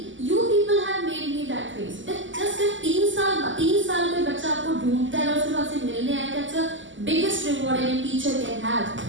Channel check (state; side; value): late; left; 0.55 ms